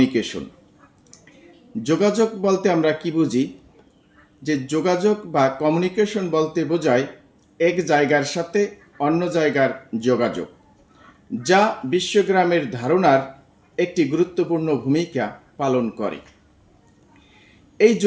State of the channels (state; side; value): identical; both; correlation 1.00